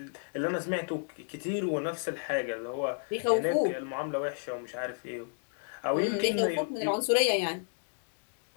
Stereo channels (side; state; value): right; silent; digital silence